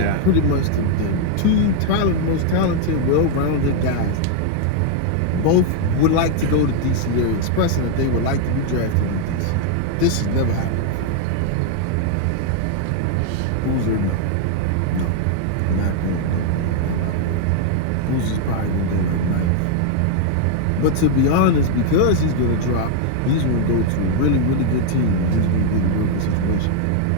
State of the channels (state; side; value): different; both; correlation 0.00